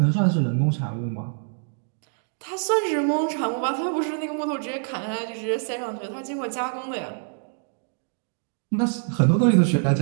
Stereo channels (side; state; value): left; silent; digital silence